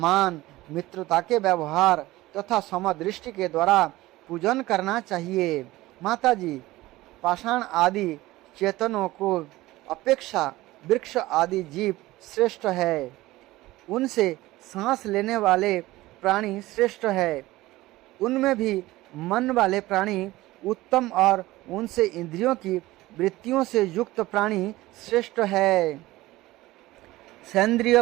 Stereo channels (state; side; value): quieter; left; 18.1 dB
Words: मित्रता के व्यवहार तथा समदृष्टि के द्वारा पूजन करना चाहिए। माता जी, पाषाण आदि चेतनों को अपेक्षा वृक्ष आदि जीव श्रेष्ठ है। उनसे सांस लेने वाले प्राणी श्रेष्ठ है। उनमें भी मन वाले प्राणी उत्तम और उनसे इंद्रियों की वृत्तियों से युक्त प्राणी श्रेष्ठ है। सेंद्रिय